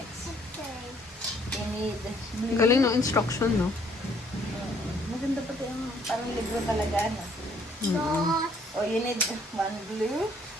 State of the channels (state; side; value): normal; both; correlation 0.64